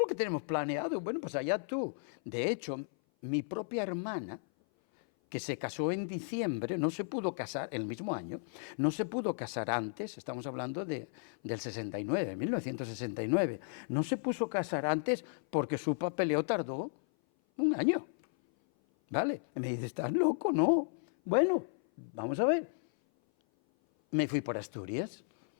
que tenemos planeado. Bueno, pues allá tú. De hecho, mi propia hermana, que se casó en diciembre, no se pudo casar, el mismo año, no se pudo casar antes, estamos hablando del 69, 1969, no se puso a casar antes porque su papeleo tardó un año, ¿vale? Y me dice: ¿estás loco? No. Bueno, vamos a ver. Me fui por Asturias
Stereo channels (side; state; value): right; silent; 55 dB below the other